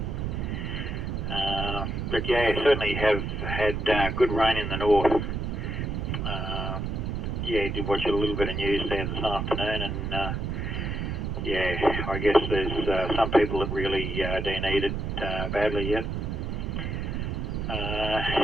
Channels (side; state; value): right; noise; rumble, 2 dB below the sound